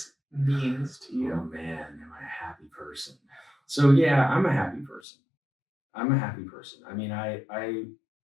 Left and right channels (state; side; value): drops out; right; at 5.0 s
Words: means to you? Oh man, am I a happy person? So yeah, I'm a happy person. I mean, I